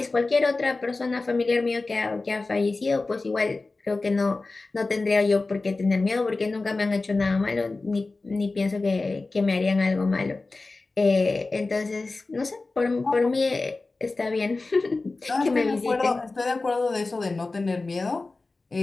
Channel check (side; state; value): right; quieter; 3.5 dB